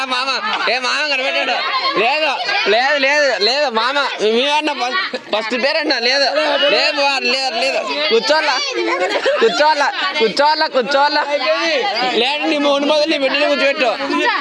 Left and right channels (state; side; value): identical; both; correlation 1.00